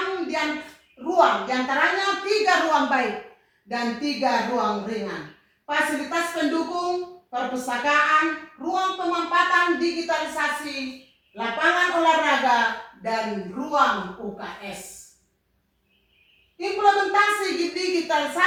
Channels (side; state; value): both; identical; correlation 1.00